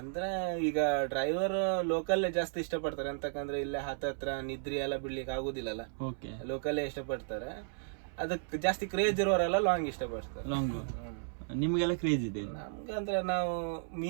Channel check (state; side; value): silent; left; 55 dB below the other